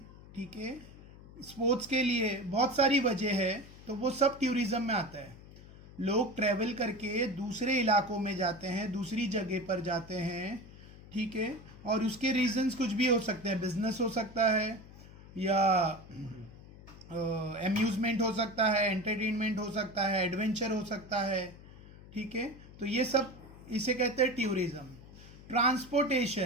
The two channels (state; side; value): noise; left; hum, 19 dB below the sound